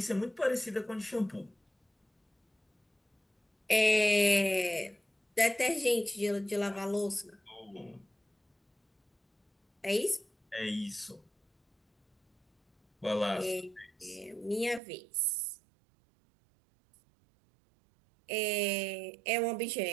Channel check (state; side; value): drops out; left; at 14.8 s